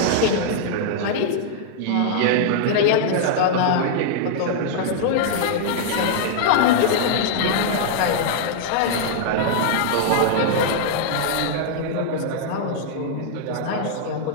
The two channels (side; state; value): both; different; correlation -0.01